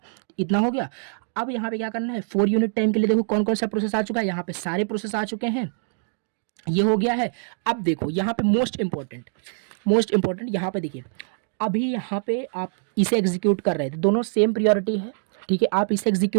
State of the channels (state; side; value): silent; left; 62 dB below the other